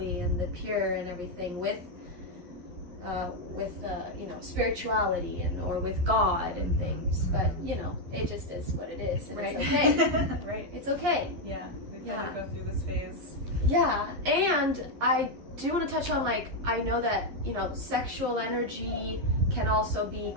and the pure and everything with spirituality or with God and things, but it just is what it is, and it's okay. Right. It's okay. We've got to go through this phase. And I do want to touch on, like, I know that sexual energy can also be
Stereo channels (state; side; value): late; left; 11 ms